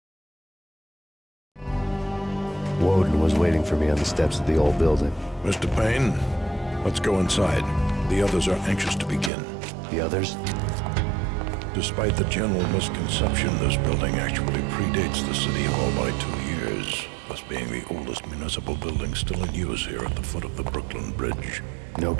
Woden was waiting for me on the steps of the old building. Mr. Payne, let's go inside. The others are anxious to begin. The others? Despite the general misconception, this building actually predates the City Hall by 2 years, thus being the oldest municipal building still in use here at the foot of the Brooklyn Bridge. No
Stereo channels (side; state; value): left; drops out; at 9.3 s